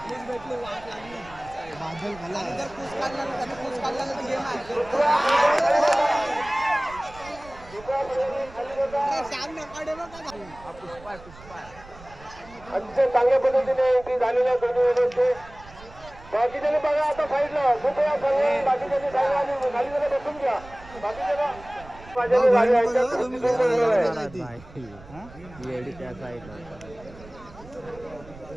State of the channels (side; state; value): right; noise; rumble, 20 dB below the sound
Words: बादल खाला अतिशय चांगल्या पद्धतीने ती झालेल्या दोन्ही बाकीच्याने बघा आता साईडला कृपया सर्व बाकीच्याने सांगा आणि खाली जरा बसून घ्या. बाकीच्याला माझ्याने गाडी आहे